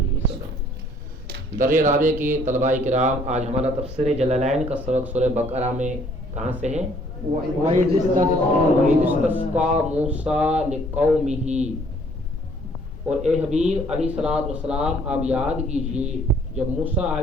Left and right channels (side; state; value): both; normal; correlation 0.61